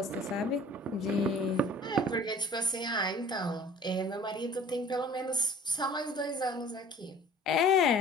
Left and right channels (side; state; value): both; normal; correlation 0.48